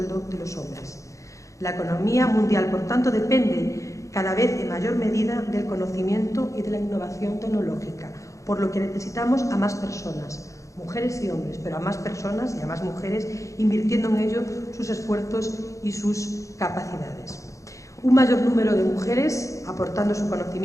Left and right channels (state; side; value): late; right; 0.15 ms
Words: de los hombres. La economía mundial, por tanto, depende cada vez en mayor medida del conocimiento y de la innovación tecnológica, por lo que necesitamos a más personas, mujeres y hombres, pero a más personas y a más mujeres invirtiendo en ello sus esfuerzos y sus capacidades. Un mayor número de mujeres aportando su